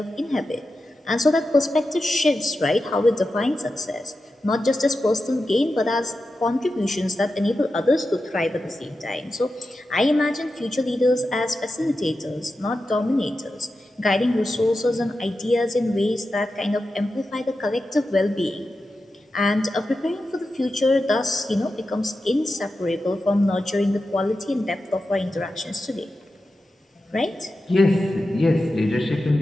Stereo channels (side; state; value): both; normal; correlation 0.91